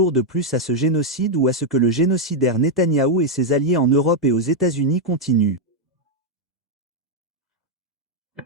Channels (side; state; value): both; normal; correlation 0.00